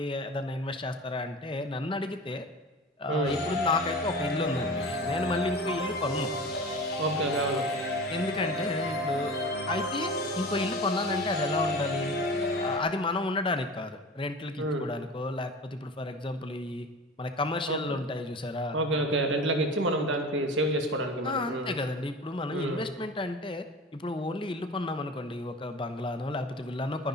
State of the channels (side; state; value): both; normal; correlation 0.34